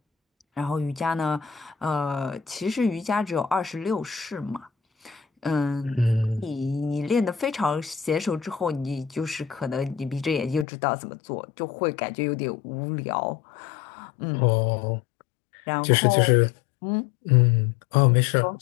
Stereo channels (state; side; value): drops out; right; at 10.7 s